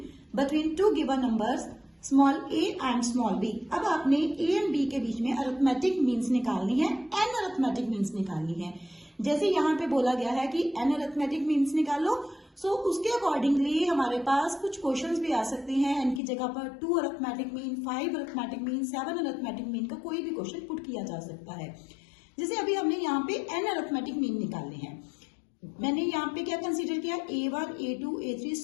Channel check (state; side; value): drops out; right; at 16.2 s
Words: between two given numbers small A and small B. अब आपने A and B के बीच में अरिथमेटिक मीन्स निकालनी है, एन अरिथमेटिक मीन्स निकालनी है। जैसे यहाँ पे बोला गया है कि एन अरिथमेटिक मीन्स निकालो, सो उसके अकॉर्डिंगली हमारे पास कुछ क्वेश्चंस भी आ सकते हैं। एन की जगह पर 2 arithmetic mean, 5 arithmetic mean, 7 arithmetic mean का कोई भी क्वेश्चन पुट किया जा सकता है। जैसे अभी हमने यहाँ पे एन अरिथमेटिक मीन निकालने हैं, मैंने यहाँ पे क्या कंसिडर किया, A1, A2, A3